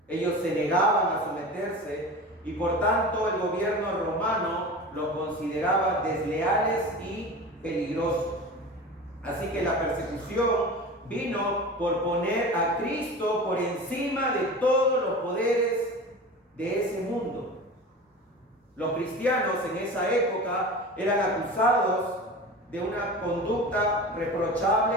Ellos se negaban a someterse y por tanto el gobierno romano los consideraba desleales y peligrosos. Así que la persecución vino por poner a Cristo por encima de todos los poderes de ese mundo. Los cristianos en esa época eran acusados de una conducta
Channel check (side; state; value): both; normal; correlation 0.33